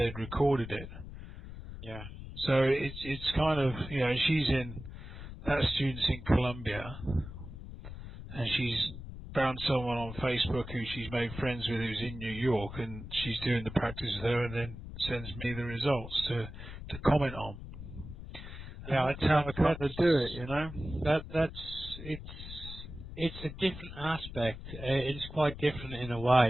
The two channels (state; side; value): noise; left; rumble, 11 dB below the sound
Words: recorded it. Yeah. So it's kind of, that student's in Colombia, and she's found someone on Facebook who she's made friends with who's in New York, and she's doing the practice with her and then sends me the results to comment on. And that's how I kind of do it, It's a different aspect. It's quite different in a